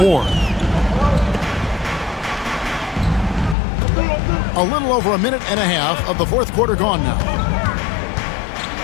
A little over a minute and a half of the fourth quarter gone now.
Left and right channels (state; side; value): drops out; right; at 3.6 s